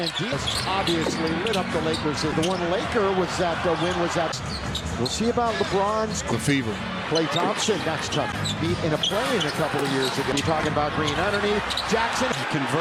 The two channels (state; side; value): identical; both; correlation 1.00